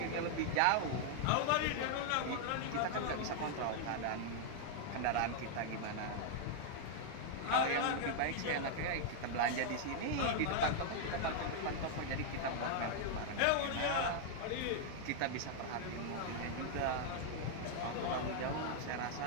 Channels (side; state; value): both; different; correlation 0.00